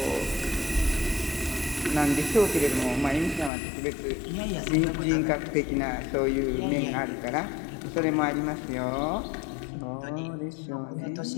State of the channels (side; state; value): right; drops out; at 3.5 s